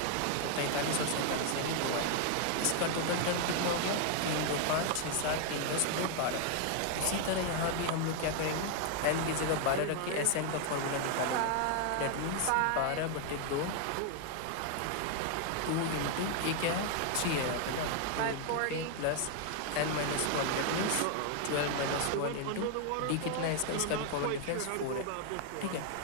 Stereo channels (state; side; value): different; both; correlation 0.00